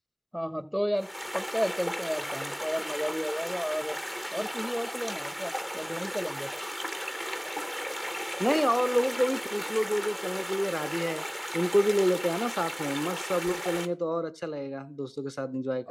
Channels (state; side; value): identical; both; correlation 1.00